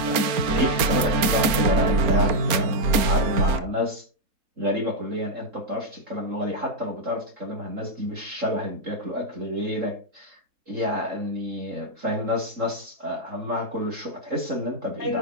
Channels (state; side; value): late; left; 4.3 ms